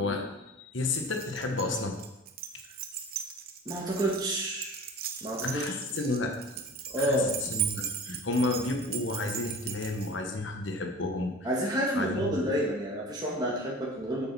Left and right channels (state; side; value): normal; both; correlation 0.39